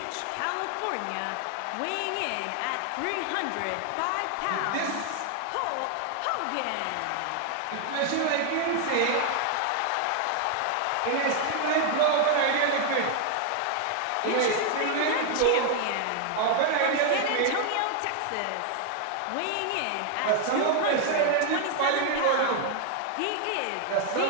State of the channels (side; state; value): both; different; correlation 0.00